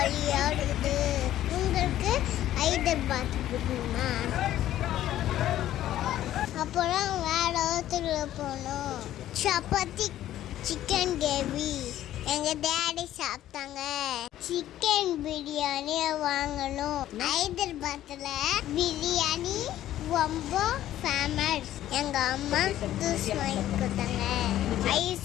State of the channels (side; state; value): right; quieter; 13.0 dB